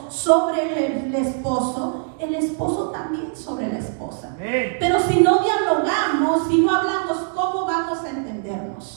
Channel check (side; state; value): left; silent; 60 dB below the other